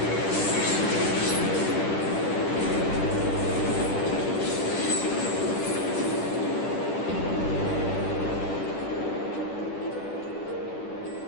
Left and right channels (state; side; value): late; right; 10 ms